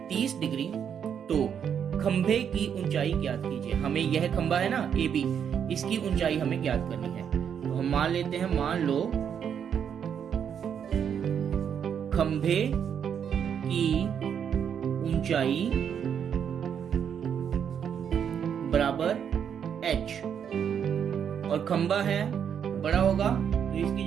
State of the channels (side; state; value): left; quieter; 8.0 dB